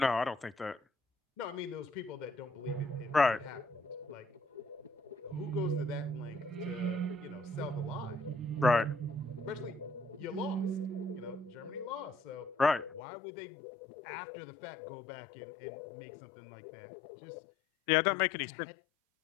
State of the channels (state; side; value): drops out; right; at 13.0 s